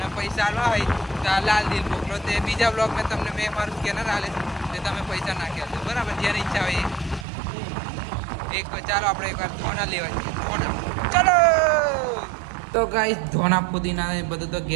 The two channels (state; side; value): drops out; left; at 7.2 s